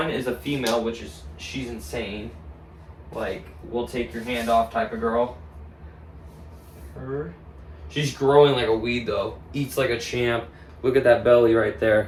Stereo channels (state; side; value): identical; both; correlation 1.00